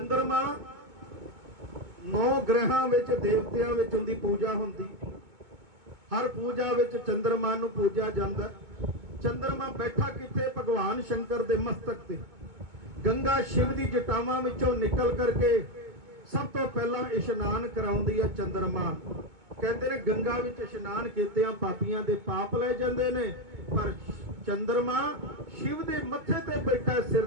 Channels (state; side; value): late; left; 2.2 ms